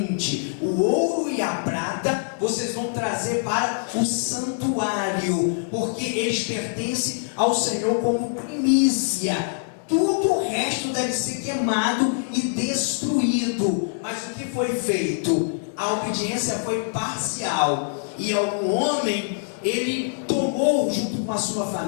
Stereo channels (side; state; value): right; silent; 62 dB below the other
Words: O ouro e a prata vocês vão trazer para o santuário, porque eles pertencem ao Senhor como primícia. Tudo o resto deve ser queimado e destruído. Mas o que foi feito? A obediência foi parcial, e algum homem, ele tomou junto com a sua